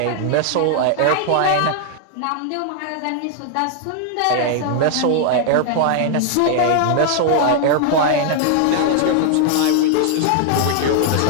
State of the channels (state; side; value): different; both; correlation 0.00